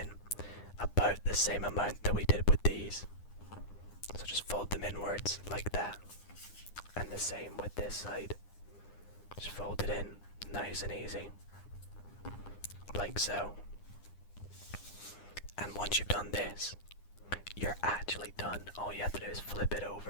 about the same amount that we did with these. So just fold them inwards like that. And the same with this side. Just fold it in, nice and easy, like so. And once you've done this, you're actually done. All you have to do is flip it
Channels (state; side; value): late; right; 9.8 ms